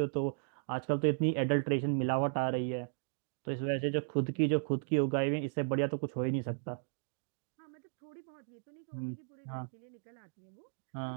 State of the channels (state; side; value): silent; left; digital silence